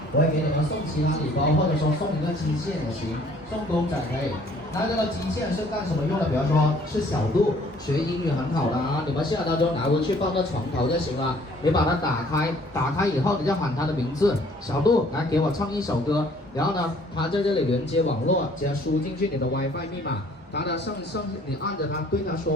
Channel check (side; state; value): both; normal; correlation 0.58